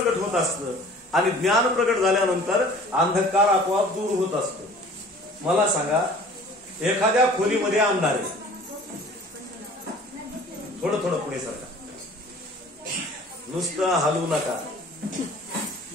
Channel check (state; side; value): normal; both; correlation 0.48